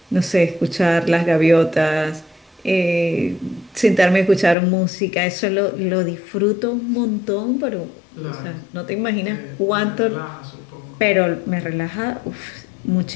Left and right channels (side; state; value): right; drops out; at 4.5 s